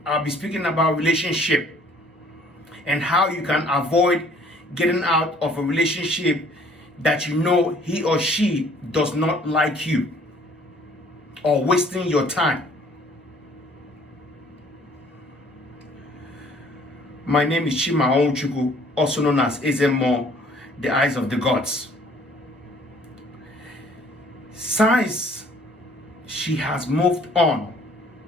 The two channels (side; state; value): both; normal; correlation 0.57